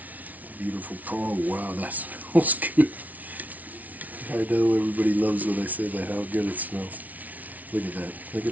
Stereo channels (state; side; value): late; left; 0.074 ms